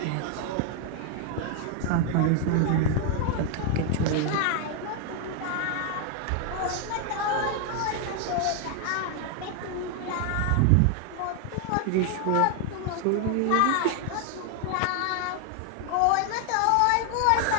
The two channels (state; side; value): different; both; correlation 0.00